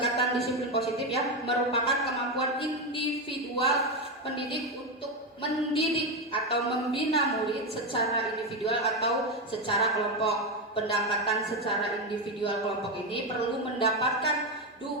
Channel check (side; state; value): both; normal; correlation 0.11